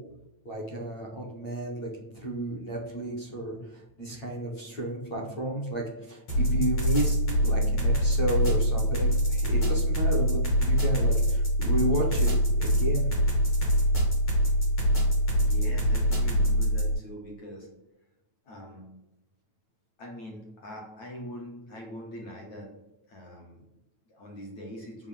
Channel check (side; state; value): right; late; 9.0 ms